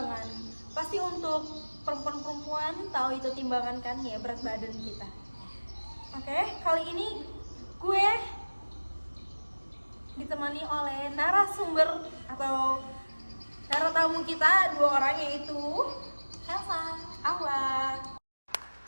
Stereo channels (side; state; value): both; inverted; correlation -1.00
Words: Pasti untuk perempuan-perempuan tahu itu timbangan kan, ya berat badan kita. Oke, kali ini gue ditemani oleh narasumber atau naratamu kita dua orang, yaitu Elsa, Awa.